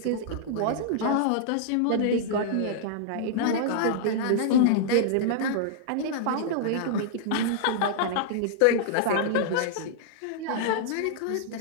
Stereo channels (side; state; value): both; different; correlation -0.01